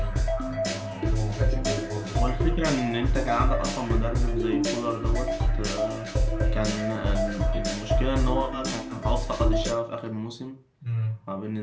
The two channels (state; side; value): identical; both; correlation 1.00